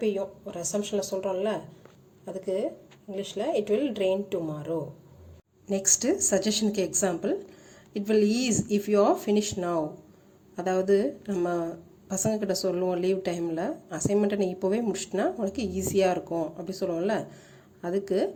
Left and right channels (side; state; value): both; identical; correlation 1.00